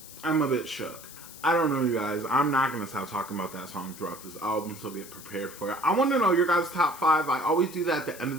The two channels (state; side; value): noise; left; hiss, 16 dB below the sound